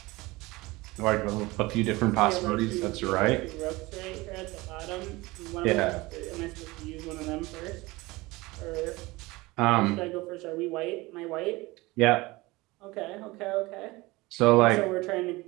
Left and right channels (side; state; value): left; quieter; 21.5 dB